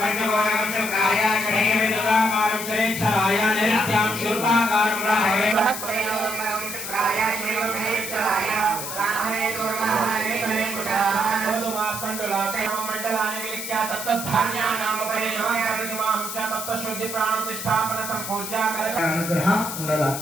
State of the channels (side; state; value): left; noise; hiss, 6 dB below the sound